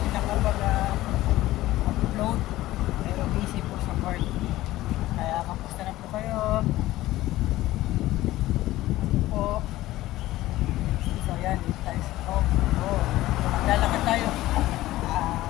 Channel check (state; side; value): quieter; right; 16.3 dB